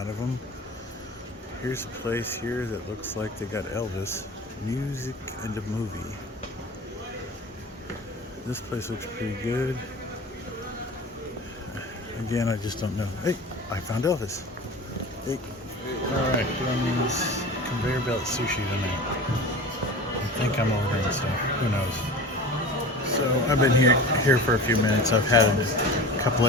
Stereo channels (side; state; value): both; normal; correlation 0.35